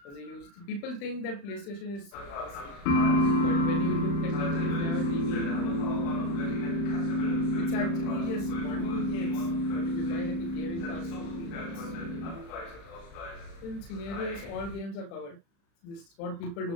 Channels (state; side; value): late; right; 35 ms